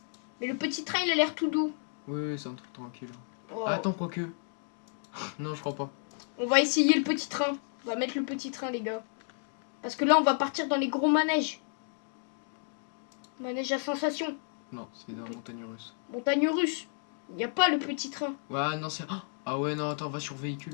Mais le petit train, il a l'air tout doux. Oui, c'est un truc tranquille. Oh. Ah, attends, quoique. Non, je crois pas. On va essayer le petit train. On va mettre le petit train, les gars. Parce que là, on va partir dans les gros manèges. Manège à sensation. Non, c'est dans la montagne russe. Montagne russe. Il n'y a pas le petit train. Ouais, non, c'est. Ah ouais, non, attends, va sur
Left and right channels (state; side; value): silent; right; 57 dB below the other